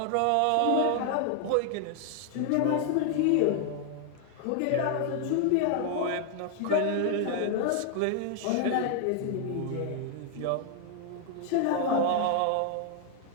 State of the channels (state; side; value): different; both; correlation 0.00